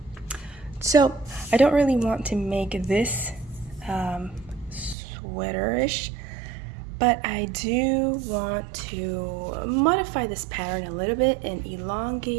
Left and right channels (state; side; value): drops out; left; at 5.0 s